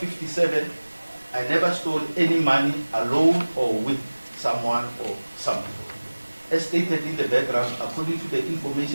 I never stole any money alone or with someone or some people. As stated in the background, according to the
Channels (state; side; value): inverted; both; correlation -1.00